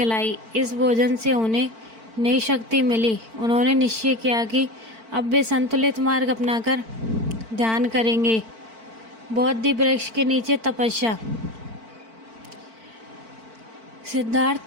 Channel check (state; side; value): late; left; 4.5 ms